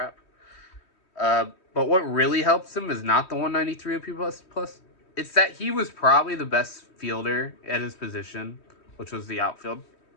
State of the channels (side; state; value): right; late; 3.2 ms